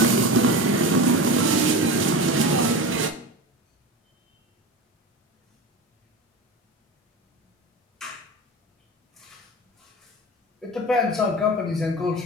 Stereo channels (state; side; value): normal; both; correlation 0.27